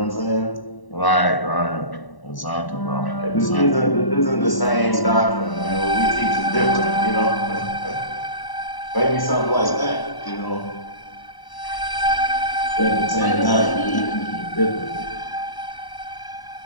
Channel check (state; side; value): late; right; 1.0 ms